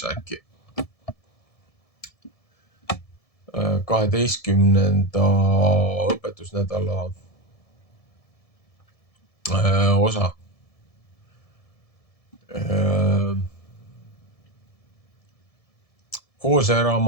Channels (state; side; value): late; right; 1.7 ms